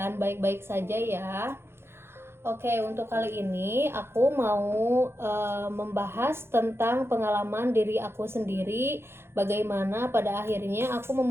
baik-baik saja ya. Oke, untuk kali ini aku mau membahas tentang pengalaman diri aku sendiri, bagaimana pada akhirnya aku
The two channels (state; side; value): late; left; 0.12 ms